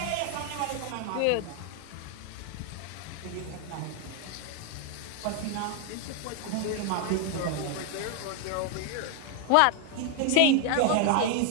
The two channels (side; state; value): both; different; correlation 0.00